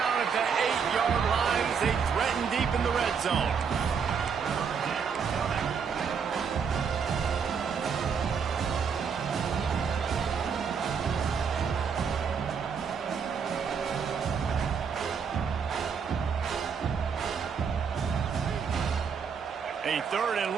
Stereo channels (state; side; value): quieter; left; 6.4 dB